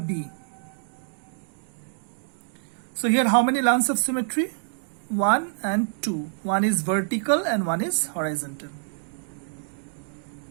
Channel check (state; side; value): silent; left; digital silence